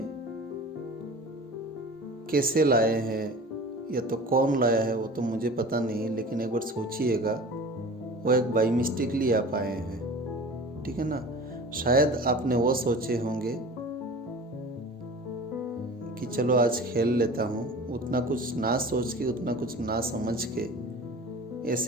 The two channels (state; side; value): normal; both; correlation 0.38